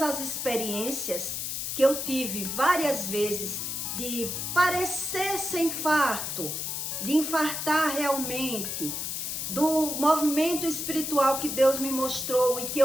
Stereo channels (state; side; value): noise; left; hiss, 3 dB below the sound